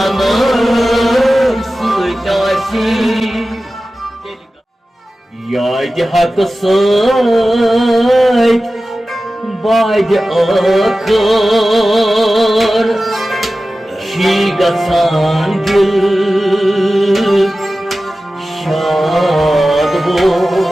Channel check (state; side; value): normal; both; correlation 0.95